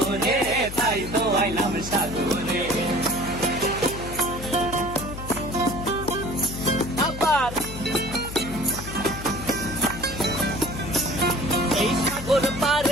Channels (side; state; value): left; noise; hum, 9 dB below the sound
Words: তাই তো আইলাম সাগরে। আবার এই সাগর